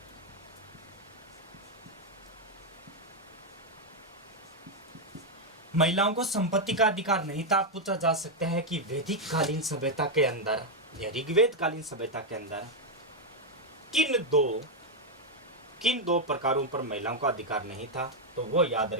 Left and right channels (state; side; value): normal; both; correlation 0.01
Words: महिलाओं को संपत्ति का अधिकार नहीं था। पूछा जा सकता है कि वैदिक कालीन सभ्यता के अंदर या ऋग्वेद कालीन सभ्यता के अंदर किन दो प्रकारों पर महिलाओं का अधिकार नहीं था। तो वो याद